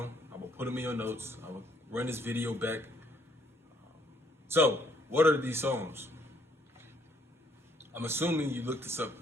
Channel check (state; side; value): normal; both; correlation 0.67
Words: I will put them in your notes, I will run this video back. So, what are these songs? I'm assuming you looked this up